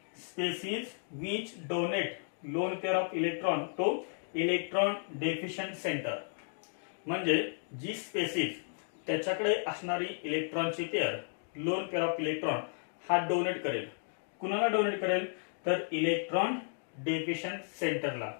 species which donate lone pair of electron to electron deficient center, म्हणजे जी spaces त्याच्याकडे असणारी इलेक्ट्रॉनची pair loan pair of electron हा donate करेल. कुणाला डोनेट करेल तर इलेक्ट्रॉन डेफिशियंट सेंटरला.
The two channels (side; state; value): right; silent; digital silence